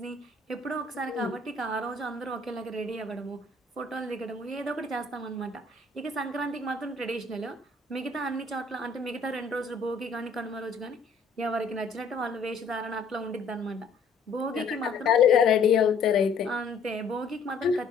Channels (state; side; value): quieter; right; 4.1 dB